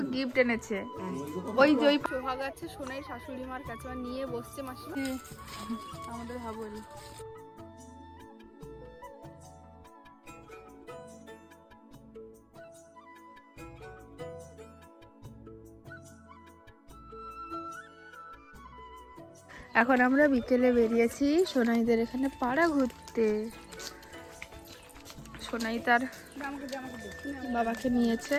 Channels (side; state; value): both; identical; correlation 1.00